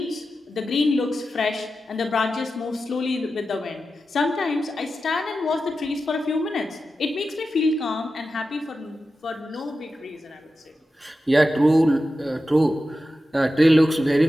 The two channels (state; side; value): normal; both; correlation 0.92